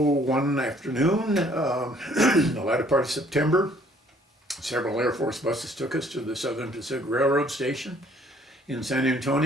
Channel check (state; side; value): normal; both; correlation 0.60